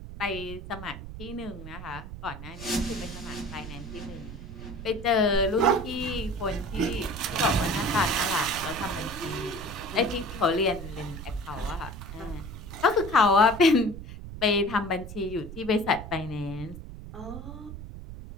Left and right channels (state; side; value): noise; right; rumble, 11 dB below the sound